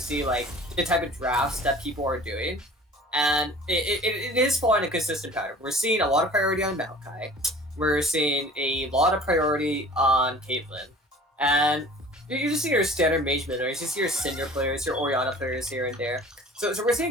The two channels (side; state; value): both; normal; correlation 0.45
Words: see like the type of drafts that people are doing, and it is following a consistent pattern. We're seeing a lot of priority on Maokai. We're seeing a lot of priority on Caitlyn, and you just see your standard mage mid, or you just see your Cinder players, your Orianna players here and there. So we're